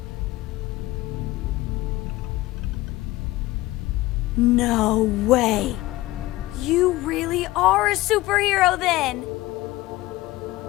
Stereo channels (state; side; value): quieter; right; 18.2 dB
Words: No way. You really are a superhero then.